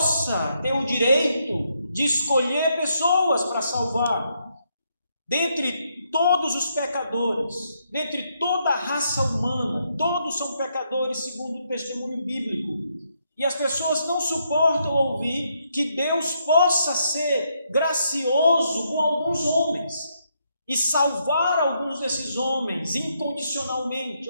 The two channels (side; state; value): both; inverted; correlation -0.77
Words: ter o direito de escolher pessoas para salvar. Dentre todos os pecadores, dentre toda a raça humana, todos são pecadores segundo o testemunho bíblico. E as pessoas não suportam ouvir que Deus possa ser gracioso com alguns homens e salvar alguns desses homens incondicionalmente,